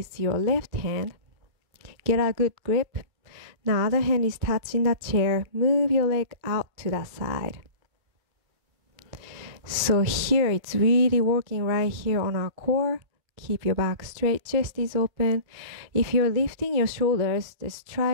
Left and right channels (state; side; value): late; left; 2.3 ms